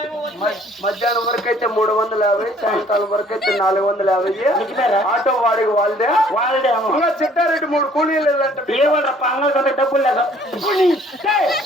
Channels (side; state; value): both; normal; correlation 0.58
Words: మధ్యాహ్నం వరకు అయితే 350, సాయంకాలం వరకు అయితే 450. ఆటో వాడికి వాళ్ళదే వాళ్ళే అమ్మ ఇంకా చిట్టారెడ్డి 3 కూలీలు వెళ్ళంటే ఏ వాళ్ళ పంగల్ కంటే డబ్బులు లేదు